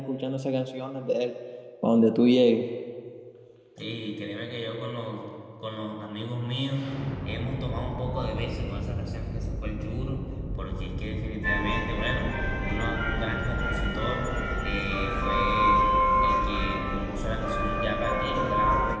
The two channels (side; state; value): both; identical; correlation 1.00